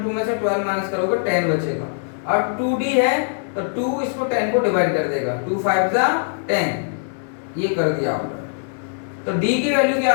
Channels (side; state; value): right; silent; 64 dB below the other